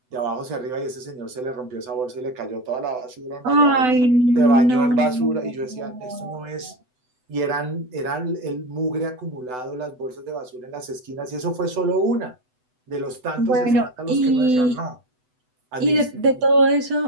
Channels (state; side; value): late; left; 7.9 ms